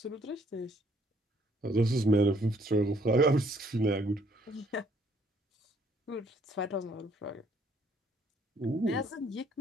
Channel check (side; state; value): both; normal; correlation 0.65